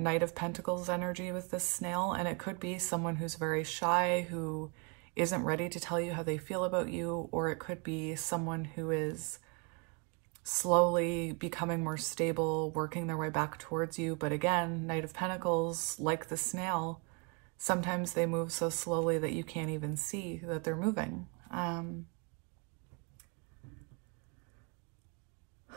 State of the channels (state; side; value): quieter; left; 33.0 dB